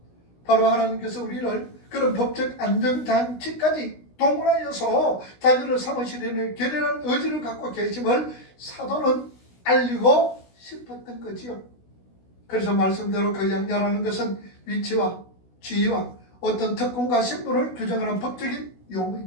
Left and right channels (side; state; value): right; late; 16 ms